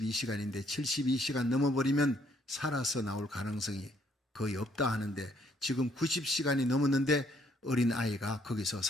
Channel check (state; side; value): normal; both; correlation 0.68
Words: 72시간 넘어버리면 살아서 나올 가능성이 거의 없다 하는데 지금 90시간이 넘었는데 어린 아이가 거기서